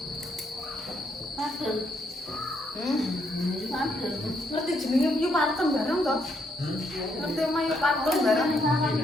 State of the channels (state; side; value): normal; both; correlation 0.74